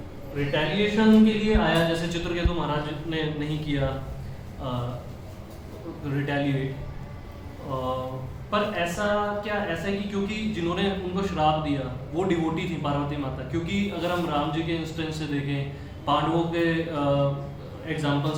रिटेलिएशन के लिए आया, जैसे चित्रकेतु महाराज ने नहीं किया रिटेलिएट, पर ऐसा है कि क्योंकि जिन्होंने उनको श्राप दिया वो डिवोटी थी पार्वती माता, क्योंकि अगर हम राम जी के इंस्टेंस से देखें, पांडवों के एग्जाम्पल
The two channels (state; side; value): identical; both; correlation 1.00